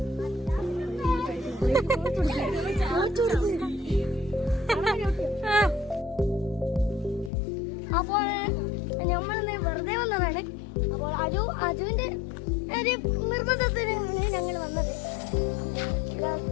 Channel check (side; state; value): right; drops out; at 7.3 s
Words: അപ്പോൾ നമ്മൾ വെറുതെ വന്നതാണ്. അപ്പോൾ അജുവിന്റെ ഒരു നിർബന്ധത്തിന് ഞങ്ങൾ വന്നത്.